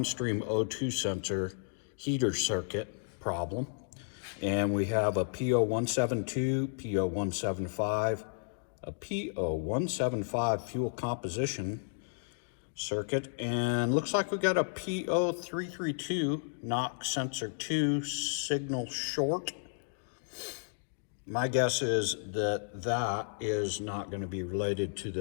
O2 sensor heater circuit problem. And we have a P0172, P0175, a P0175 fuel composition circuit, and looks like we got a P0332 knock sensor 2 signal short. My guess is that that is not going to be related to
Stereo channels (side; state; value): right; silent; digital silence